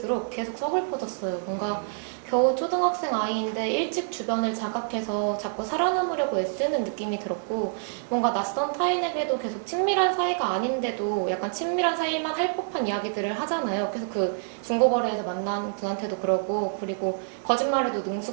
계속 서글퍼졌어요. 뭔가 겨우 초등학생 아이인데 일찍 주변을 자각해서 자꾸 살아남으려고 애쓰는 느낌이 들었고 뭔가 낯선 타인에게도 계속 친밀한 사이가 아닌데도 약간 친밀한 사이만 할 법한 이야기들을 하잖아요. 그래서 그 중고거래에서 만난 분한테도 그러고 그리고 거짓말에도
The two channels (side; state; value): left; silent; digital silence